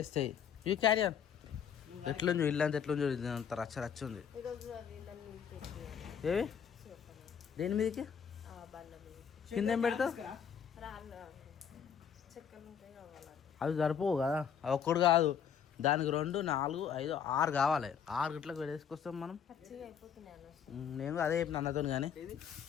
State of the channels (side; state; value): right; quieter; 7.8 dB